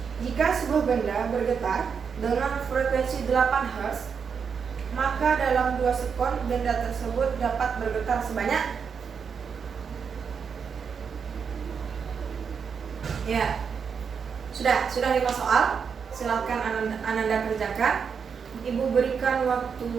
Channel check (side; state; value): left; quieter; 6.4 dB